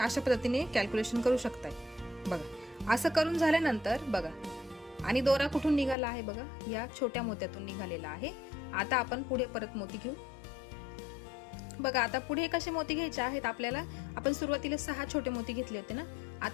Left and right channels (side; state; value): right; drops out; at 6.0 s